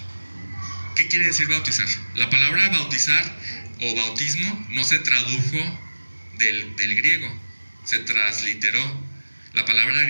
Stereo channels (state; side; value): inverted; both; correlation -1.00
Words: ¿Qué quiere decir bautizar? La palabra bautizar o bautismo no se tradujo del griego, se transliteró. La palabra